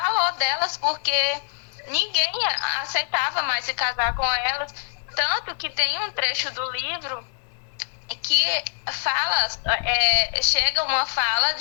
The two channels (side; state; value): right; silent; digital silence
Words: delas porque ninguém aceitava mais se casar com elas. Tanto que tem um trecho do livro que fala, chega uma fala